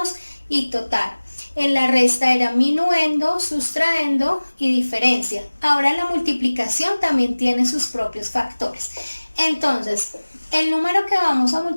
y total. En la resta era minuendo, sustraendo y diferencia. Ahora la multiplicación también tiene sus propios factores. Entonces, el número que vamos a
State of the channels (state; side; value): inverted; both; correlation -1.00